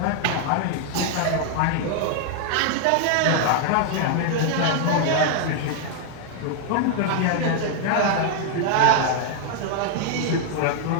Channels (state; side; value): different; both; correlation 0.00